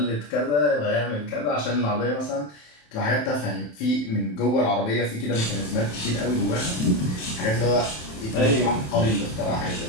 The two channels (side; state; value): right; late; 27 ms